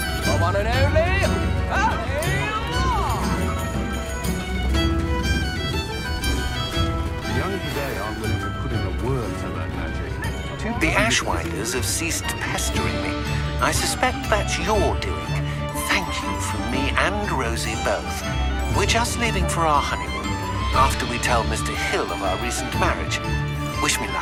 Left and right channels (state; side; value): identical; both; correlation 1.00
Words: The one and only. The young today aren't willing to put in a word to learn magic. The Ashwinders have ceased pestering me. I suspect that's your doing. Thank you from me and Rosie both. We're just leaving for our honeymoon, after we tell Mr. Hill of our recent marriage. Wish me